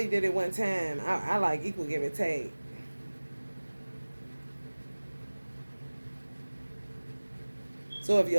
did it one time. I like equal give and take. So if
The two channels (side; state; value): both; inverted; correlation -1.00